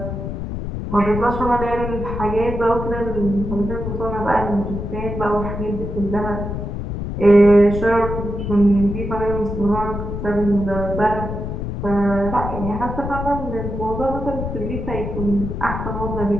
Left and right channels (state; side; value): noise; left; rumble, 5 dB below the sound